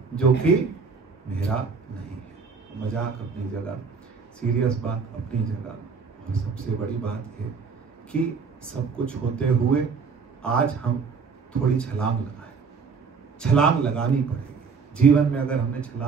जो कि मेरा नहीं है। मजाक अपनी जगह, सीरियस बात अपनी जगह, और सबसे बड़ी बात है कि सब कुछ होते हुए आज हम थोड़ी छलांग लगाएं। छलांग लगानी पड़ेगी जीवन में। अगर हमने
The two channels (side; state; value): left; quieter; 5.3 dB